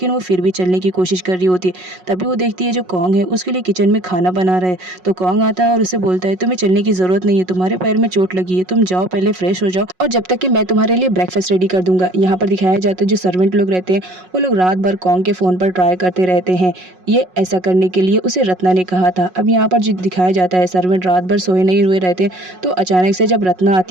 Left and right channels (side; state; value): left; late; 5.5 ms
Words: वो फिर भी चलने की कोशिश कर रही होती है। तभी वो देखती है जो कॉन्ग है उसके लिए किचन में खाना बना रहा है। तो कॉन्ग आता है और उसे बोलता है तुम्हें चलने की जरूरत नहीं है, तुम्हारे पैर में चोट लगी है, तुम जाओ पहले फ्रेश हो जाओ और जब तक कि मैं तुम्हारे लिए ब्रेकफास्ट रेडी कर दूंगा। यहाँ पर दिखाया जाता है जो सर्वेंट लोग रहते हैं वो लोग रात भर कॉन्ग के फ़ोन पर ट्राई करते रहते हैं। ये ऐसा करने के लिए उसे रत्ना ने कहा था। अब यहाँ पर जो दिखाया जाता है सर्वेंट रात भर सोए नहीं हुए रहते, तो अचानक से जब रत्ना